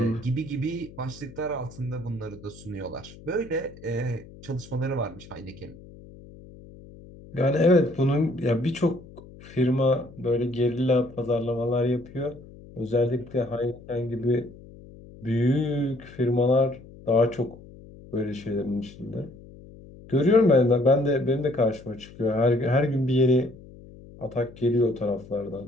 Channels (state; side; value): noise; left; hum, 19 dB below the sound